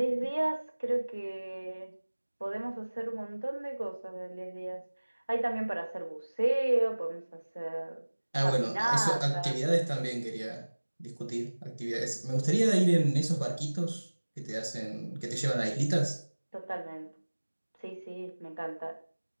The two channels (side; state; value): both; inverted; correlation -1.00